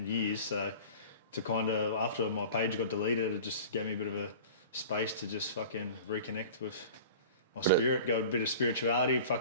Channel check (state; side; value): inverted; both; correlation -0.40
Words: years. So to kind of, after my page got deleted, it just gave me a bit of a space to just fucking reconnect with my spirit, go a bit of spirituality,